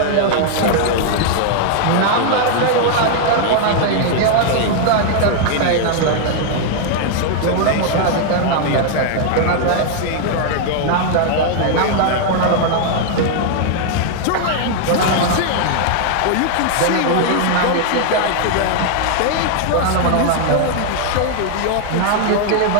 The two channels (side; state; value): both; different; correlation 0.00